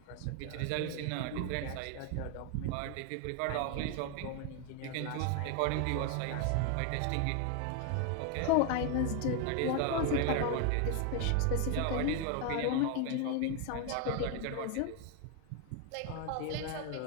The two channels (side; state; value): both; different; correlation 0.01